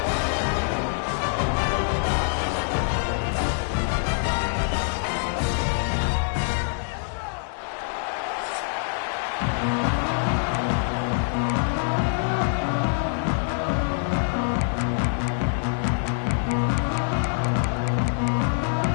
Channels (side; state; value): right; silent; digital silence